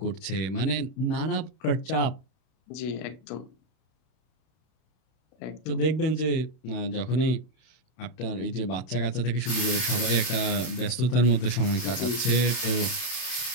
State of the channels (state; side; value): late; right; 32 ms